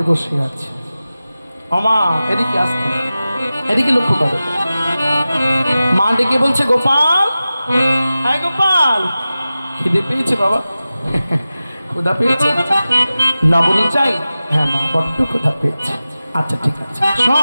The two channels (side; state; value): both; inverted; correlation -0.95